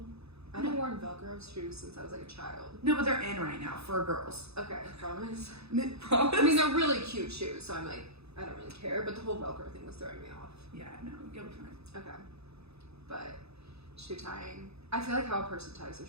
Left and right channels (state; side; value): late; left; 0.79 ms